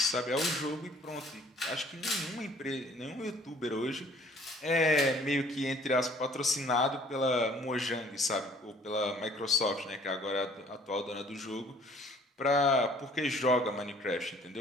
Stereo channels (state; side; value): normal; both; correlation 0.56